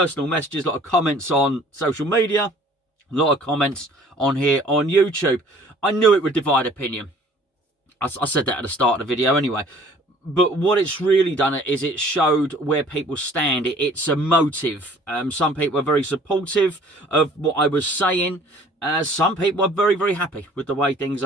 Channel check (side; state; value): both; normal; correlation 0.53